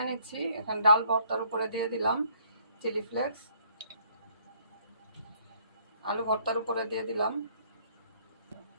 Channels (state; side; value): inverted; both; correlation -0.63